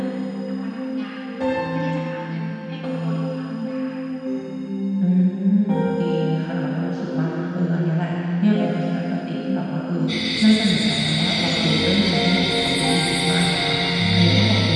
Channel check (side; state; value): both; identical; correlation 1.00